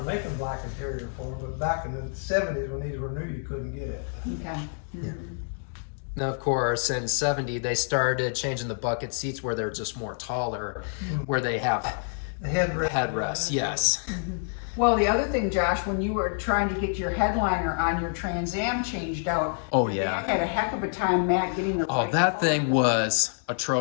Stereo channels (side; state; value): right; silent; digital silence